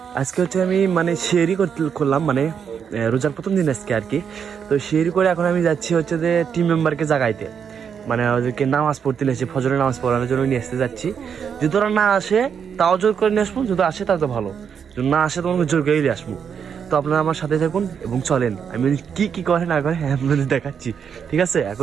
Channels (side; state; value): left; quieter; 7.3 dB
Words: আজকে হচ্ছে আমি মানে শেয়ারই করলাম, মানে রোজার প্রথম দিন আজকে আর কি। তো শেয়ারি করে এখন আমি যাচ্ছি হচ্ছে যে টিম মেম্বারকে জাগাইতে, মানে ওদেরকে নামাজ পড়তে নিয়ে আসে, ফজরের নামাজ পড়ানোর জন্য নিয়ে আসতে যাচ্ছি। যদি ওরা না আসে তাও জোর করে নিয়ে আসবো, যদি আসে তাও তো ভালো, যদি না আসে তোমাকে জোর করে নিয়ে আসবো। তো আপনারা আমার সাথে থাকুন এবং চলেন, আমি কি কি করে না করে আপনাদের দেখাচ্ছি, ঠিক আছে?